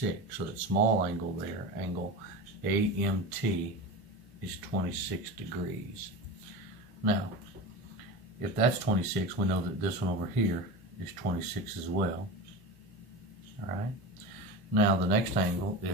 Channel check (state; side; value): normal; both; correlation 0.27